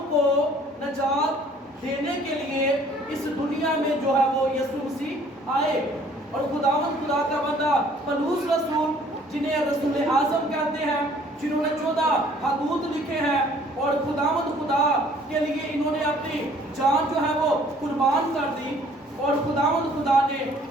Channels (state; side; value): normal; both; correlation 0.56